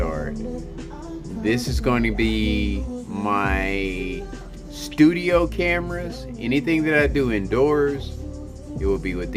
This is going to be my studio cameras. Anything that I do indoors, it will be with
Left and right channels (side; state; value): both; identical; correlation 1.00